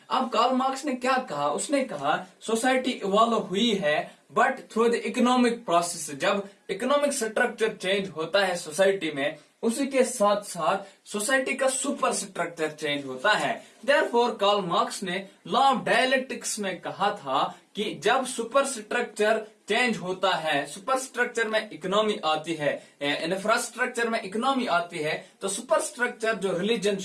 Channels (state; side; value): identical; both; correlation 1.00